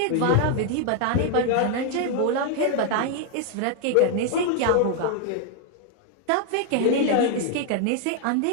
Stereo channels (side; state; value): both; different; correlation 0.00